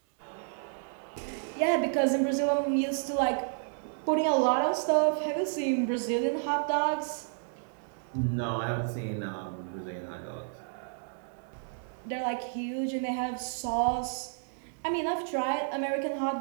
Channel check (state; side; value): silent; left; digital silence